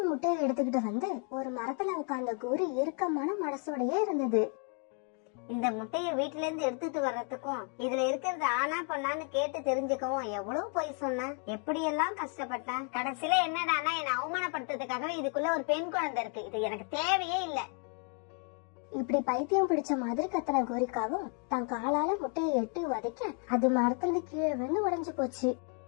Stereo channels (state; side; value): quieter; right; 38.4 dB